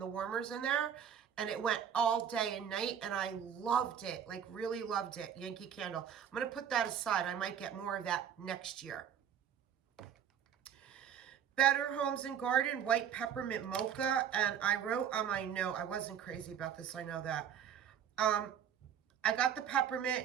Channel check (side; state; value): left; quieter; 8.6 dB